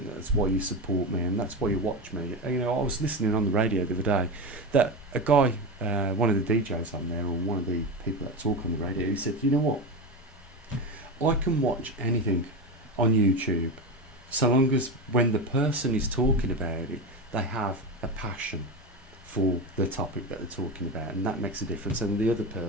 that's why you support me, and that's why you watch me. You know, I was listening on the radio the other day that a guy, one of the DJs on there, or one of the people that talk on the radio, he said, you know what, I can watch anything on YouTube so long as when the person is talking about it, they have a passion for the topic that they're talking about, and that makes a difference. And the other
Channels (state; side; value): normal; both; correlation 0.20